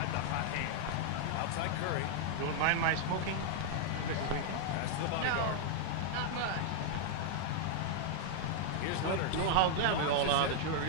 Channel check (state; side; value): different; both; correlation 0.00